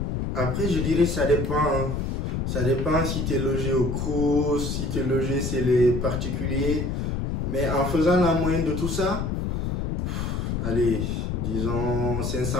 après, je dirais ça dépend. Hein. Ça dépend si tu es logé au Crous, si tu es logé chez les particuliers. Mais en faisant la moyenne de tout ça, allez, disons 500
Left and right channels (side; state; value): left; noise; rumble, 1 dB below the sound